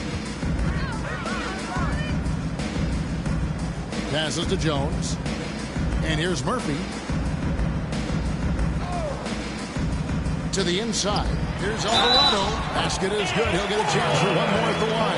Passes to Jones. And here's Murphy. To the inside. Here's Alvarado. Basket is good. He'll get a chance for one more at the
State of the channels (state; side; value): identical; both; correlation 1.00